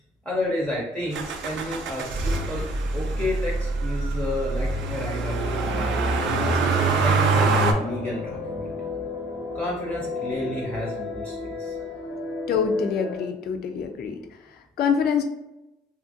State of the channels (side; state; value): both; normal; correlation 0.55